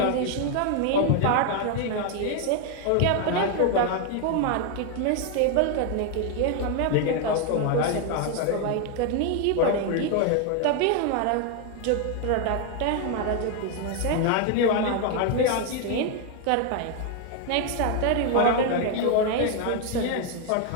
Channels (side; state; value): both; different; correlation 0.01